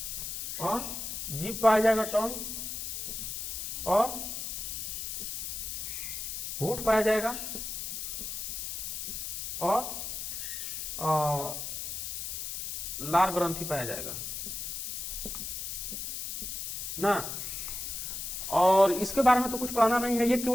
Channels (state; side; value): noise; left; hiss, 5 dB below the sound